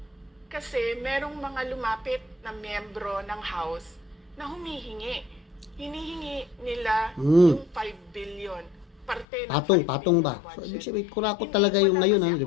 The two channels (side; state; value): right; drops out; at 9.2 s